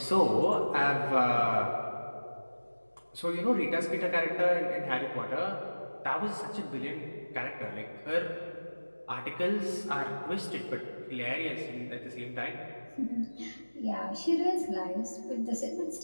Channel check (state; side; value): inverted; both; correlation -1.00